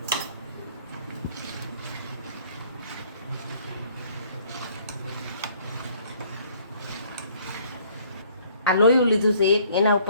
આ લોયું લીધું છે એક, એના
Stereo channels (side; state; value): both; inverted; correlation -0.60